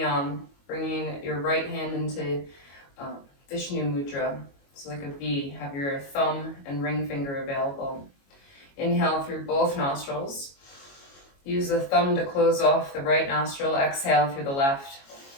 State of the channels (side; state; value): right; late; 22 ms